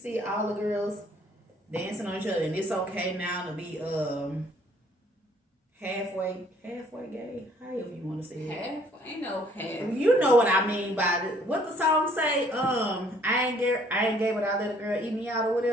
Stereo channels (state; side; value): normal; both; correlation 0.61